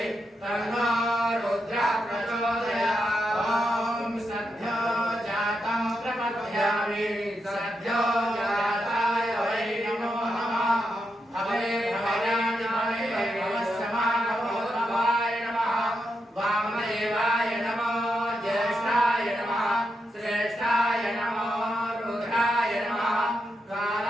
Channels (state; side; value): normal; both; correlation 0.85